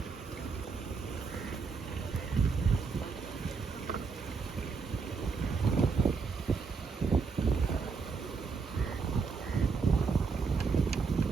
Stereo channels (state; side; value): quieter; left; 5.0 dB